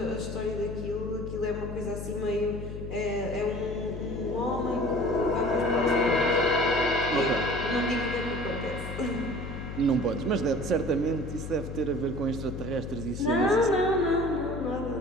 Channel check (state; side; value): noise; left; hum, 8 dB below the sound